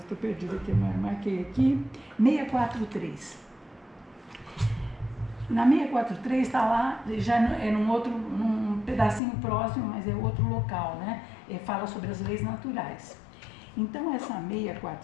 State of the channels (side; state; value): right; drops out; at 9.2 s